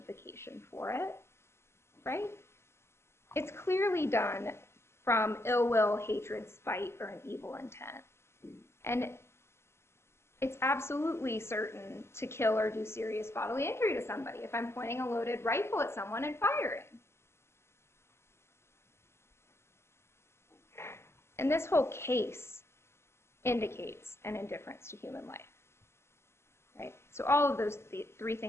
for it, right? It's clearly done from ill will, hatred, spite, or an evil intent. And it's absolutely certain to kill or do serious bodily injury to somebody if I'm pointing a loaded rifle at someone and firing. And this whole case indicates an indifference to human life, right? So all of those three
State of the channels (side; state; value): right; late; 0.12 ms